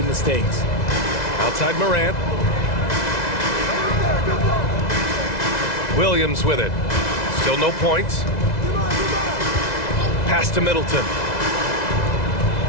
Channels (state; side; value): late; right; 2.0 ms